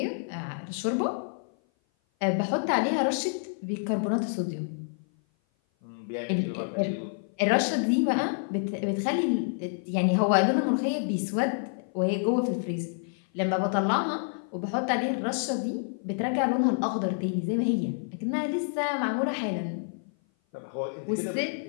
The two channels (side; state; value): right; silent; 56 dB below the other